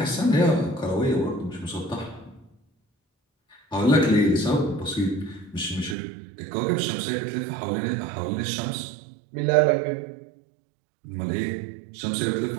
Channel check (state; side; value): drops out; left; at 6.0 s